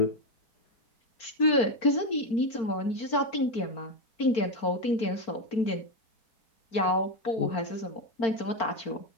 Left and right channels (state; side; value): late; right; 4.4 ms